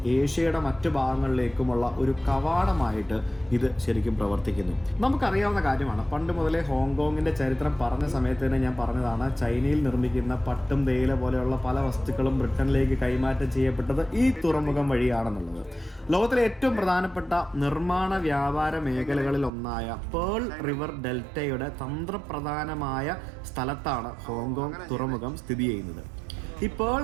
ഏഷ്യയുടെ മറ്റു ഭാഗങ്ങളിലേക്കുമുള്ള ഒരു കവാടമായിട്ട് ഇത് ശരിക്കും പ്രവർത്തിക്കുന്നു. നമുക്കറിയാവുന്ന കാര്യമാണ്. പണ്ട് മുതലേ ഹോങ്കോങ്ങിൻ്റെ ചരിത്രം പറഞ്ഞ സമയത്ത് തന്നെ ഞാൻ പറഞ്ഞതാണ്, ചൈനയിൽ നിർമ്മിക്കുന്ന പട്ടും തേയില പോലെയുള്ള പല വസ്തുക്കളും ബ്രിട്ടനിലേക്ക് കൈമാറ്റം ചെയ്യപ്പെട്ടത് ഈ തുറമുഖം വഴിയാണെന്നുള്ളത്. ലോകത്തിലെ ഏറ്റവും പ്രധാനപ്പെട്ട നിർമ്മാണ വ്യാപാര മേഖലകളിൽ ഒന്നായ പേൾ റിവർ ഡെൽറ്റയുടെ തന്ത്രപ്രധാനമായ സ്ഥലത്താണ് ഹോങ്കോങ് തുറമുഖം സ്ഥിതി ചെയ്യുന്നത്. ഈ പേൾ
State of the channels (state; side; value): drops out; left; at 19.5 s